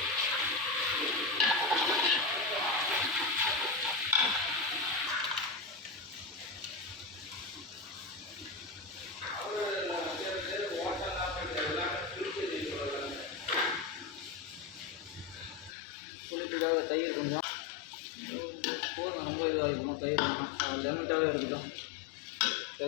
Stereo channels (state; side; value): drops out; right; at 15.8 s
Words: புளிப்புக்காக தயிர் கொஞ்சம் போதும். ரொம்ப இதாக இருக்கணும். தயிர் லெமட்டாகவே இருக்கட்டும்.